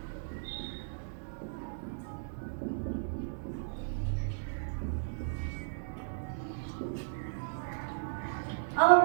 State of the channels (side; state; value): left; silent; digital silence